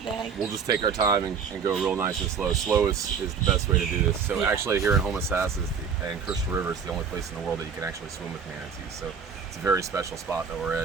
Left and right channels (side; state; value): left; quieter; 6.4 dB